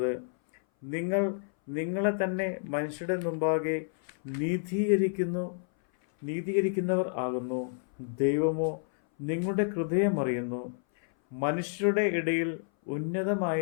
നിങ്ങൾ നിങ്ങളെ തന്നെ മനുഷ്യരുടെ മുമ്പാകെ നീതീകരിക്കുന്നവർ ആകുന്നു. ദൈവമോ നിങ്ങളുടെ ഹൃദയം അറിയുന്നു. മനുഷ്യരുടെ ഇടയിൽ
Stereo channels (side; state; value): right; silent; 57 dB below the other